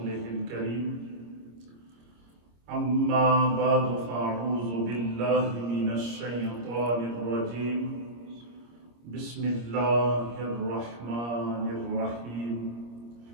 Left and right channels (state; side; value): late; left; 25 ms